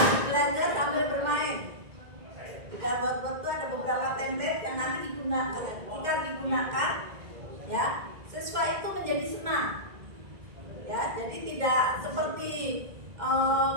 belajar sambil bermain. Di dalam Wordwall itu ada beberapa template yang nanti digunakan. Ketika digunakan, ya, siswa itu menjadi senang. Ya, jadi tidak seperti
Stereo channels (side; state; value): left; late; 2.1 ms